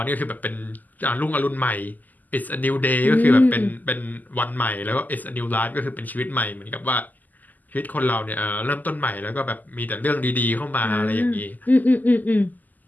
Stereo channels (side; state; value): right; late; 0.083 ms